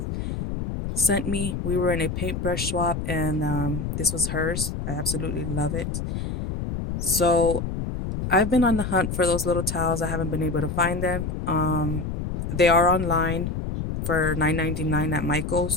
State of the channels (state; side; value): noise; left; rumble, 4 dB below the sound